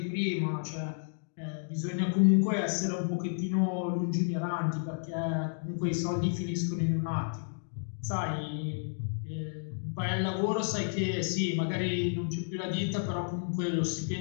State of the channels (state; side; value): silent; right; digital silence